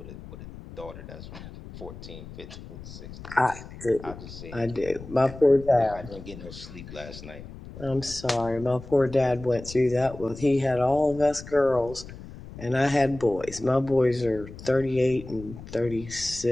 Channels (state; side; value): noise; left; rumble, 14 dB below the sound